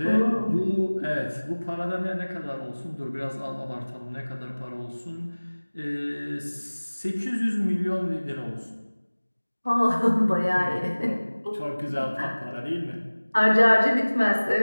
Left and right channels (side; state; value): both; inverted; correlation -1.00